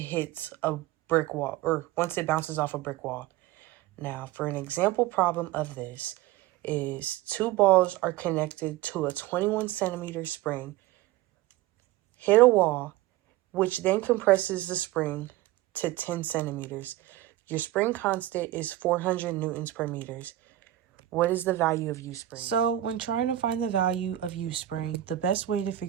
hits a brick wall or once it bounces off a brick wall. Now, for an example problem of this is two balls are connected to a 21 centimeter spring, hit a wall, which then compresses the spring to 10 centimeters. Your spring constant is 400 newtons per meters. What is the value of U spring? So when trying to find the value of U spring, the best way to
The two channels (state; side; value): quieter; left; 14.6 dB